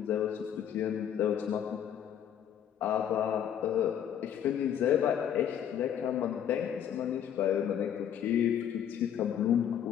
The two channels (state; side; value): quieter; right; 9.4 dB